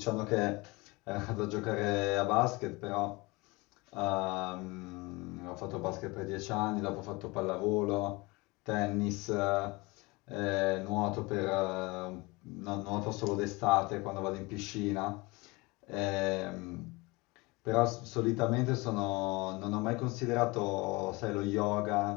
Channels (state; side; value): quieter; right; 24.4 dB